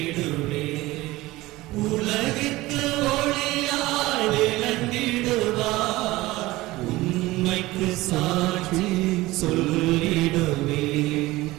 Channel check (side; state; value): left; quieter; 19.0 dB